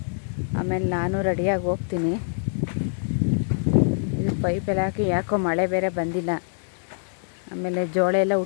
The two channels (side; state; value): right; silent; 62 dB below the other